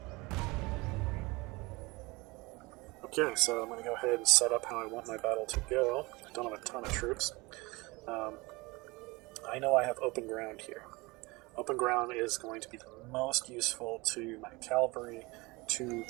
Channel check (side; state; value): left; quieter; 24.0 dB